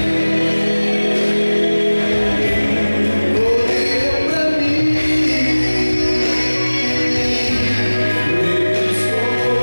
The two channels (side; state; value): both; inverted; correlation -1.00